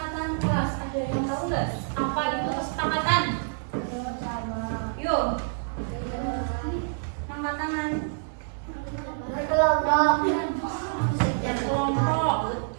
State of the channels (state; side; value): silent; left; digital silence